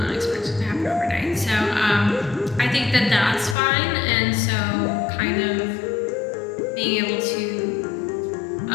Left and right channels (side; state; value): right; drops out; at 3.6 s